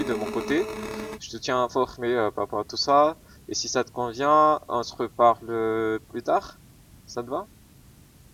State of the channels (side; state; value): both; identical; correlation 1.00